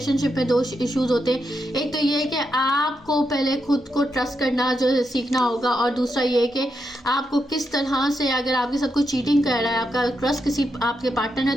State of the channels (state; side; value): normal; both; correlation 0.83